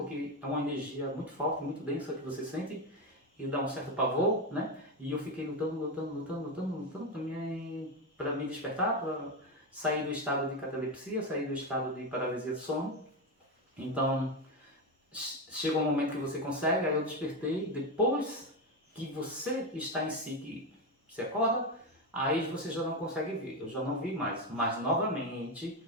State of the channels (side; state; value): both; normal; correlation 0.12